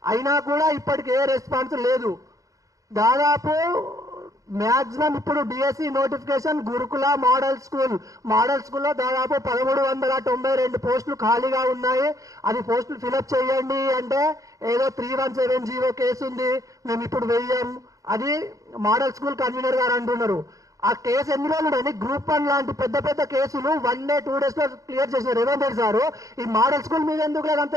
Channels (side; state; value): left; late; 0.16 ms